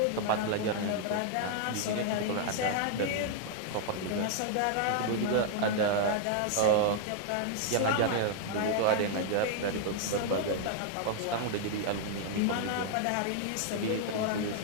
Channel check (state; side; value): different; both; correlation 0.00